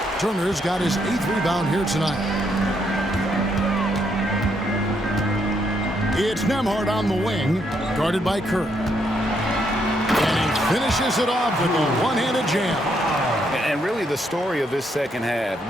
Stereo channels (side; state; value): both; normal; correlation 0.75